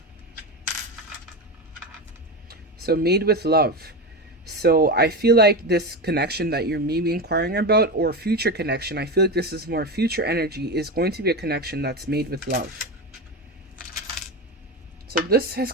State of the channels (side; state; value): both; normal; correlation 0.20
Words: So made with love. So I feel like this connection that you're maybe inquiring about, or future connection, I feel like this is more future energy, is going to be a connection that's made with love. So this has